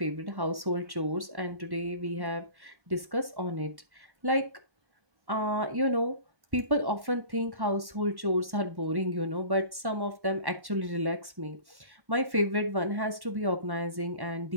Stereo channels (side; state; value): left; late; 1.1 ms